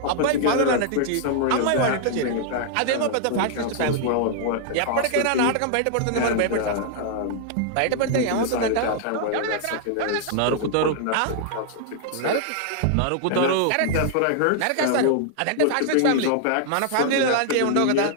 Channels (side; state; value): both; different; correlation -0.01